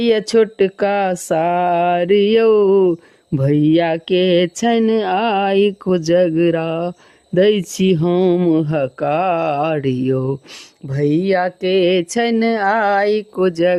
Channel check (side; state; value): both; identical; correlation 1.00